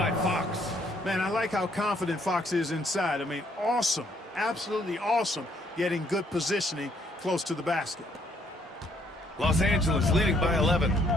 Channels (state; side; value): normal; both; correlation 0.68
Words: Fox. Man, I like how confident Fox is inside. I mean, awesome, absolutely awesome, getting good positioning close to the basket. Los Angeles leading by 11.